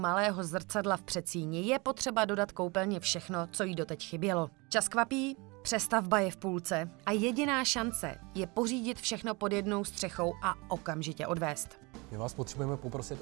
zrcadla v předsíni, je potřeba dodat koupelně všechno, co jí doteď chybělo. Čas kvapí, přestavba je v půlce a jediná šance je pořídit všechno pod jednou střechou a okamžitě odvést. My vás potřebujeme poprosit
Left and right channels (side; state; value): left; quieter; 27.0 dB